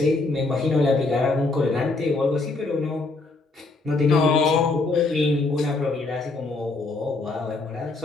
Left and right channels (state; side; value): quieter; right; 3.5 dB